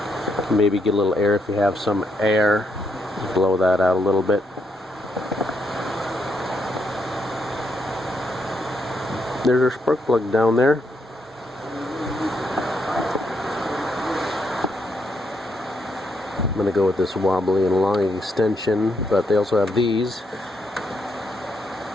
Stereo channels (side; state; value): both; normal; correlation 0.78